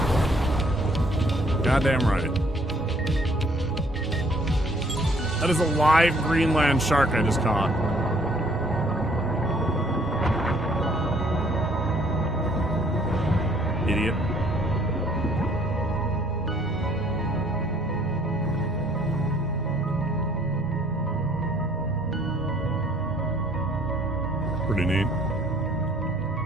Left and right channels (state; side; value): normal; both; correlation 0.61